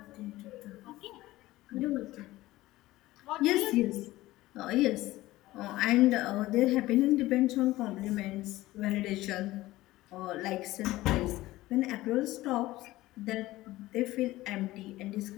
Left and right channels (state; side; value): quieter; right; 17.4 dB